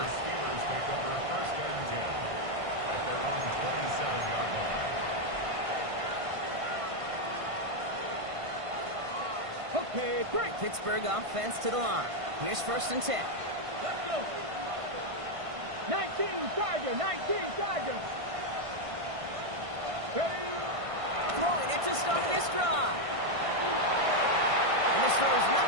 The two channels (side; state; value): left; late; 1.5 ms